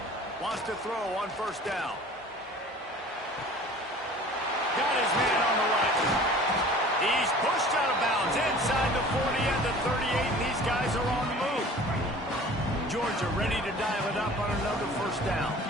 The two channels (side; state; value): both; normal; correlation 0.45